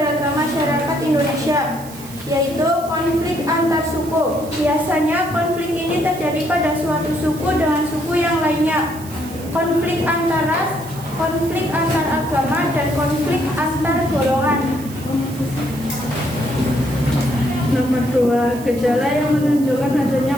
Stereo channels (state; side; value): noise; right; hiss, 17 dB below the sound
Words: masyarakat Indonesia, yaitu konflik antar suku. Biasanya konflik ini terjadi pada suatu suku dengan suku yang lainnya. Konflik antar ras, konflik antar agama, dan konflik antar golongan. Nomor 2, gejala yang menunjukkan adanya